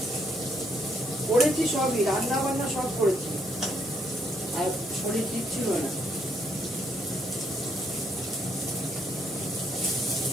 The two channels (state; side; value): normal; both; correlation 0.72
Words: করেছি সবই, রান্না বান্না সব করেছি, আর শরীর ঠিক ছিল না।